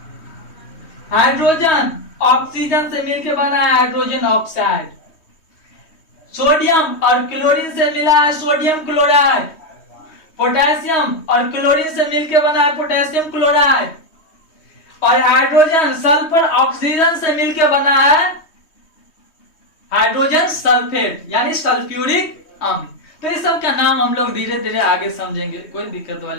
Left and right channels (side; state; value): right; late; 3.2 ms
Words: हाइड्रोजन ऑक्सीजन से मिलकर बना है हाइड्रोजन ऑक्साइड। सोडियम और क्लोरीन से मिला है सोडियम क्लोराइड। पोटेशियम और क्लोरीन से मिलकर बना है पोटेशियम क्लोराइड। और हाइड्रोजन सल्फर ऑक्सीजन से मिलकर बना है हाइड्रोजन सल्फेट यानी सल्फ्यूरिक अम्ल। तो इस सब का नाम हम लोग धीरे धीरे आगे समझेंगे, कोई दिक्कत